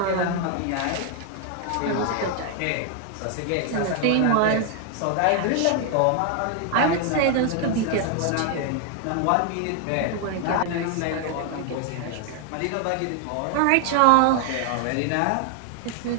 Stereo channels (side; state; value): both; different; correlation 0.00